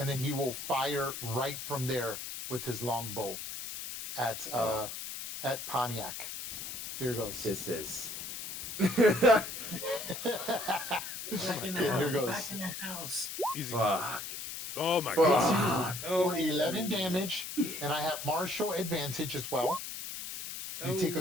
then he will fire right from there with his longbow at Pontiac. Here goes. This is. Back in the Here house. goes. Back in the house. Easy. Fuck. Oh my god. Fuck. For 11 damage, and I have martial advantage as well. You take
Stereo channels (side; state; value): left; noise; hiss, 7 dB below the sound